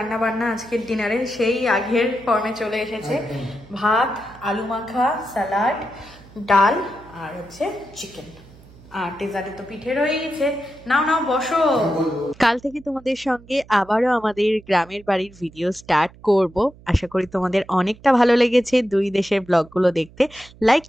বান্না আজকের ডিনারে সেই আগের ফর্মে চলে এসেছে। ভাত, আলু মাখা, স্যালাড, ডাল আর হচ্ছে চিকেন। আর ডেজার্টে তো পিঠে রয়ে গেছে। নাও নাও বসো। কাল থেকে তোমাদের সঙ্গে আবারও আমাদের গ্রামের বাড়ির ভিডিও স্টার্ট করব। আশা করি তোমাদের অনেকটা ভালো লেগেছে দুই দেশের ব্লগগুলো দেখতে। লাইক,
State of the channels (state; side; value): noise; right; hum, 23 dB below the sound